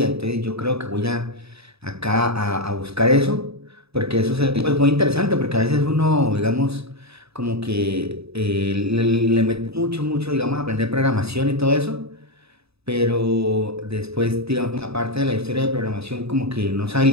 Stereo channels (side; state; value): left; late; 0.78 ms